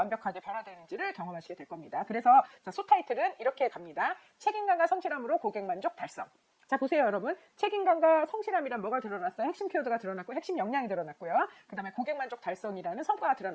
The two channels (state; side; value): identical; both; correlation 1.00